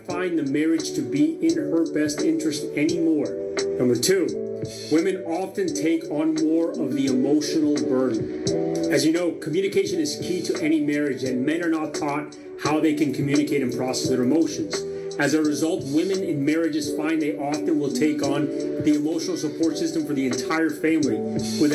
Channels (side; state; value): both; identical; correlation 1.00